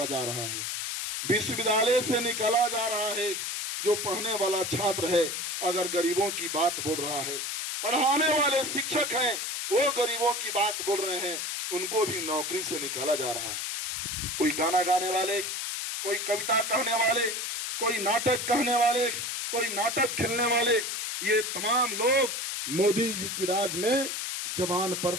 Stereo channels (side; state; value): left; noise; hiss, 3 dB below the sound